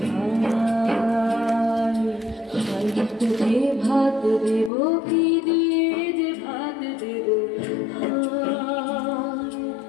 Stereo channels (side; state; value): right; drops out; at 4.7 s